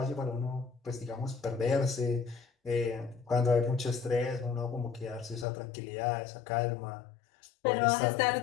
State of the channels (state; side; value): drops out; right; at 5.5 s